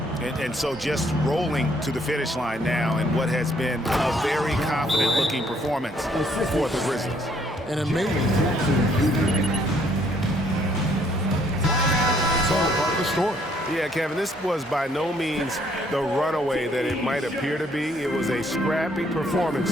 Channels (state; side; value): normal; both; correlation 0.66